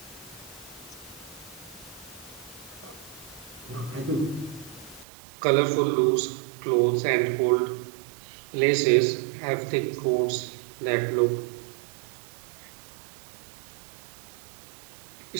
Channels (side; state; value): left; drops out; at 5.1 s